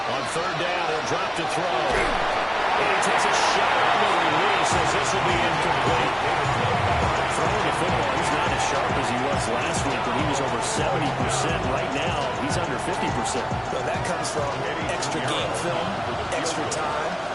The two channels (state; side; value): identical; both; correlation 1.00